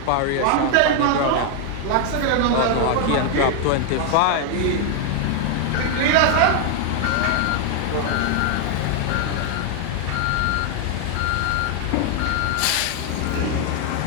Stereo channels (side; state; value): both; different; correlation 0.00